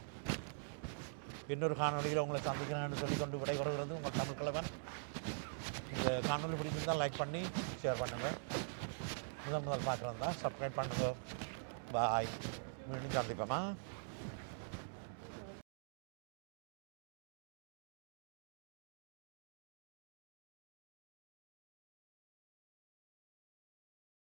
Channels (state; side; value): silent; left; digital silence